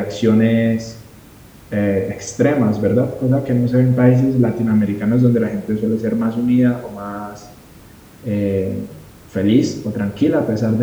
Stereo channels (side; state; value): both; identical; correlation 1.00